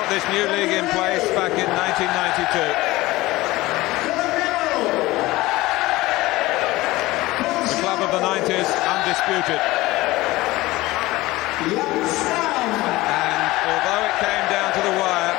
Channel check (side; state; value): right; quieter; 19.1 dB